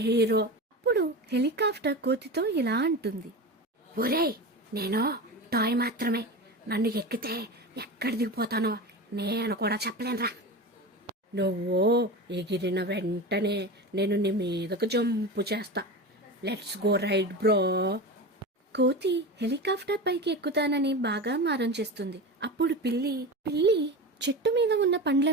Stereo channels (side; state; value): both; normal; correlation 0.26